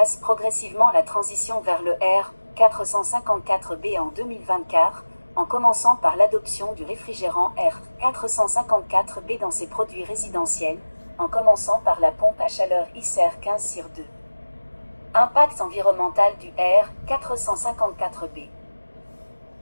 progressivement la transition vers le R454B en 2024, en commençant par l'adoption du réfrigérant R454B dans ses produits résidentiels, en commençant par la pompe à chaleur ICER 15/2. Impact environnemental du R454B.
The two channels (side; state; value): both; inverted; correlation -1.00